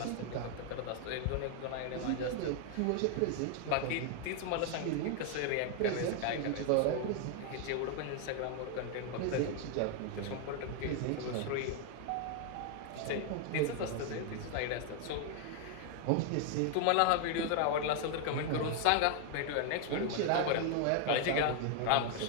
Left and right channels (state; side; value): different; both; correlation 0.00